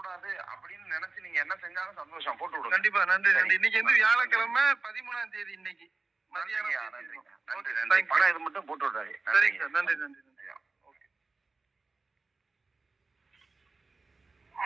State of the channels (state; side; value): quieter; left; 3.8 dB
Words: அப்படின்னு நினைச்சு நீங்க என்ன செஞ்சாலும் சந்தோஷம், போட்டு விடுங்க. கண்டிப்பா. நன்றி நன்றி. இன்னைக்கு வியாழக்கிழமை 13ஆம் தேதி. இன்னைக்கு மதியானம். நன்றி நன்றி. பணம் இது மட்டும் போட்டு விடுறாரு. சரிங்க சார். நன்றி நன்றி நன்றி. ஓகே.